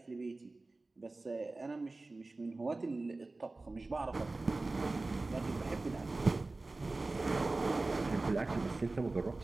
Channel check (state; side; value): quieter; left; 3.3 dB